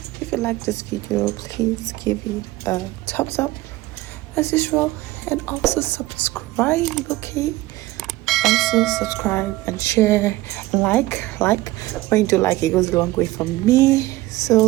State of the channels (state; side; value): quieter; left; 18.2 dB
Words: If you like this video, please give it a thumbs up as usual, and also subscribe. Okay, also subscribe and share and like when you do like, it goes a long way for me. So